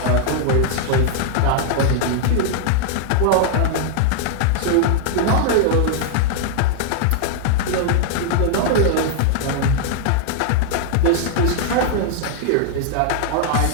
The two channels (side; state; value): both; different; correlation -0.01